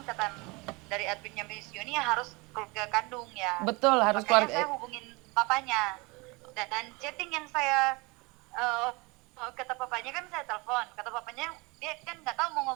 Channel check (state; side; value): quieter; left; 26.1 dB